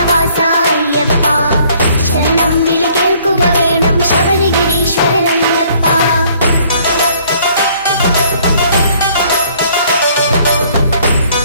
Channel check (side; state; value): both; inverted; correlation -0.60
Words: അയ്യപ്പ ശരണം വിളി കേൾക്കുക വേണം ശബരിഗിരീശ്വരനയ്യപ്പ